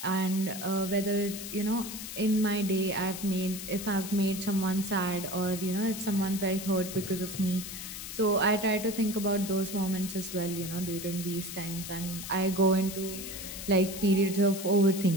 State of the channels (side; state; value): left; noise; hiss, 9 dB below the sound